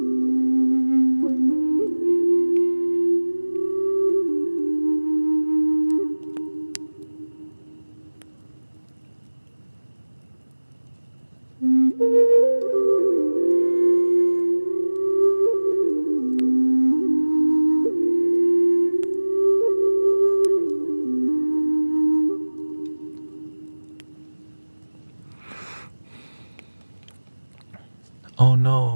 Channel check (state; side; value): inverted; both; correlation -1.00